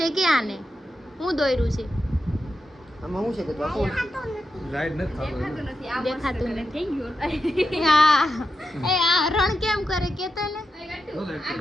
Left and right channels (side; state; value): both; normal; correlation 0.88